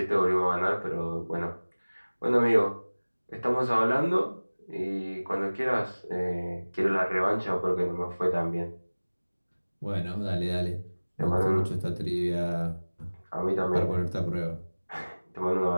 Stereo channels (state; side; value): inverted; both; correlation -1.00